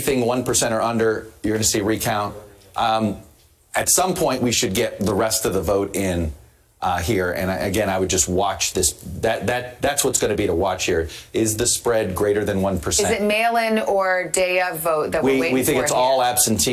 1% or under, you're going to see recount. At some point, we should get the rest of the vote in here. And again, I would just watch this. That's what's going to be to watch here. Is the spread greater than 1%? Is it mail-in or day of vote that we're waiting for? We think it's here? all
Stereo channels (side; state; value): both; identical; correlation 1.00